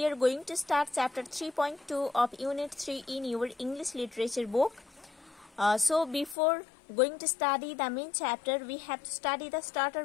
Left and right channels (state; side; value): drops out; right; at 6.4 s